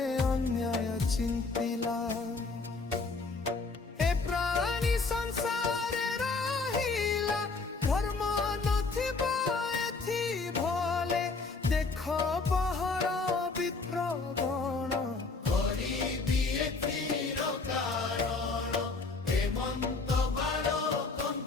ଅନ୍ୟାୟ ଚିନ୍ତିଲା ଏ ପ୍ରାଣୀ ସଂସାରେ ରହିଲା ଧର୍ମ ନଥିବ ଏଥି ଭଲେ ଦେଖ ପହର ବିପ୍ରଗଣ କରିବି ଏଥିର କାରଣ ହେମନ୍ତ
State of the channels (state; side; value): quieter; right; 4.0 dB